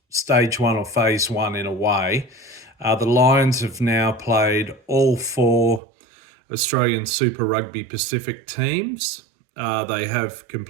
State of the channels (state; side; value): drops out; left; at 5.8 s